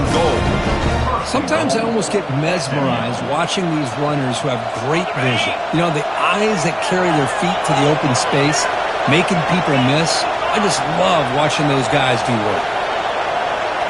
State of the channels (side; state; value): both; identical; correlation 1.00